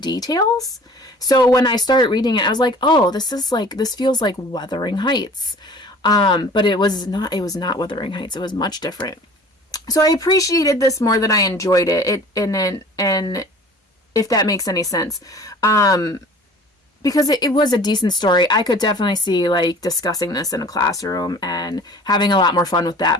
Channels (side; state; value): both; normal; correlation 0.46